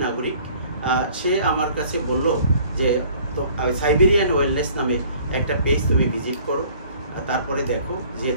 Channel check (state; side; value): inverted; both; correlation -0.54